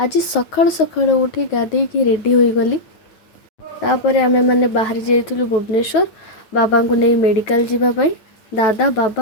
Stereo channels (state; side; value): late; right; 9.1 ms